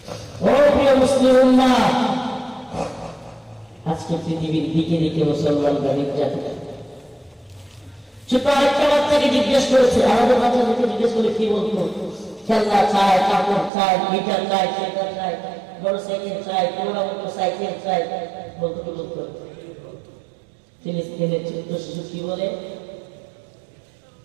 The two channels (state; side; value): drops out; left; at 13.7 s